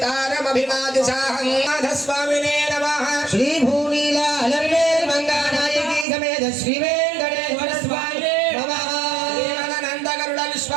नाथस्वामिने नमः श्रीभूनीलालर्वेर्मङ्गानायकी समेत श्रीवेङ्कटेश्वर स्वामिने नमः देवानन्दगरुड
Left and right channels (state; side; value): drops out; left; at 6.1 s